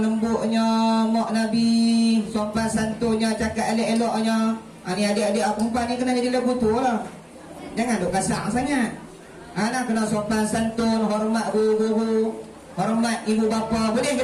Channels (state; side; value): identical; both; correlation 1.00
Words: lembutnya mak Nabi, sopan santunnya, cakap elok-eloknya. Ni adik-adik perempuan ni kena jadi lagu tu lah. Jangan duk kasar sangat. Nak kena sopan santun, hormat guru-guru, hormat ibu bapa. Boleh ke